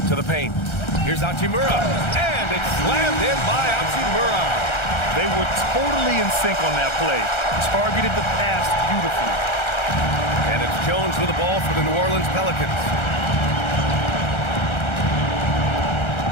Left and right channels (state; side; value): late; right; 1.3 ms